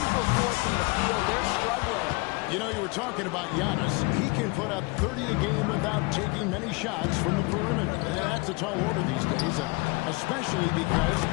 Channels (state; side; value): quieter; right; 27.1 dB